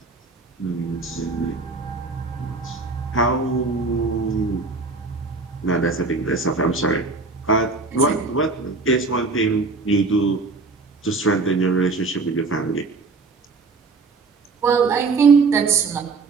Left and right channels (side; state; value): left; quieter; 4.1 dB